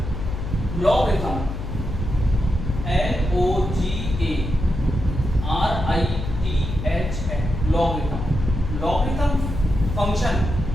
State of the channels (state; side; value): noise; left; hum, 6 dB below the sound